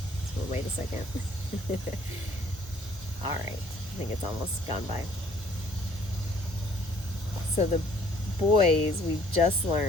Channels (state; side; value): normal; both; correlation 0.59